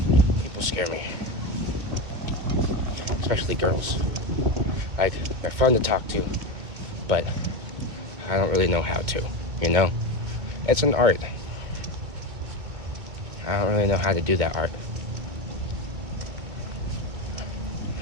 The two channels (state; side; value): late; left; 2.3 ms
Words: People scare me. Especially girls. Like, they're fun to talk to, but I don't really know how to, you know? It's an art. I don't really know how to do that art.